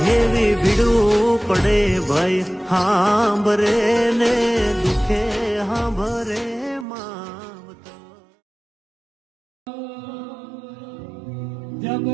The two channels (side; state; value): left; drops out; at 6.9 s